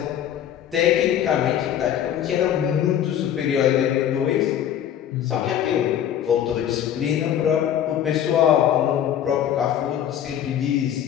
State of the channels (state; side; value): quieter; right; 10.2 dB